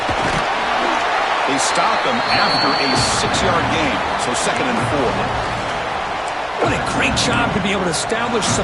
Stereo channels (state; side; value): identical; both; correlation 1.00